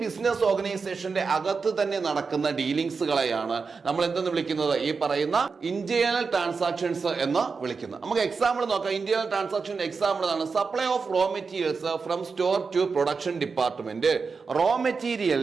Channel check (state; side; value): quieter; left; 4.9 dB